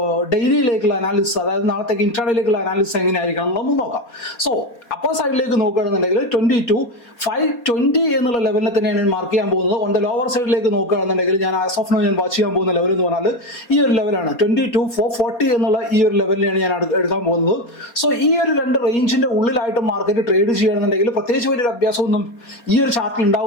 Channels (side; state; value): right; late; 4.2 ms